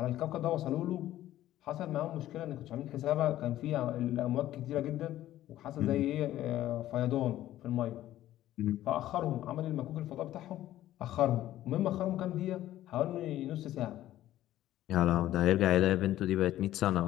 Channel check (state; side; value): quieter; right; 13.7 dB